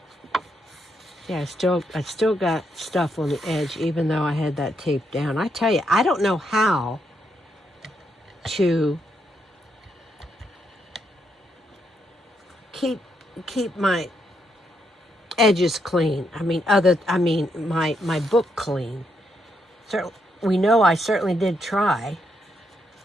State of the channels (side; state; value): both; normal; correlation 0.78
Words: yeah, I still got stuff on the edge, even though I had that tape down. I tell you, I don't know how to keep my edges clean. I mean, my book clean. So we know I certainly did try.